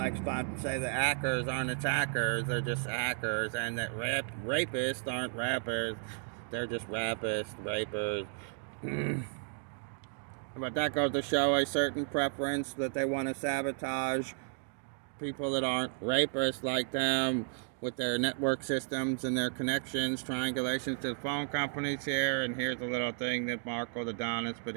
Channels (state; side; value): silent; left; 55 dB below the other